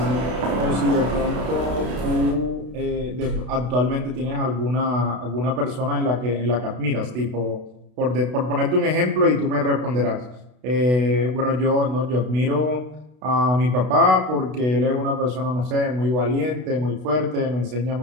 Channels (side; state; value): left; late; 32 ms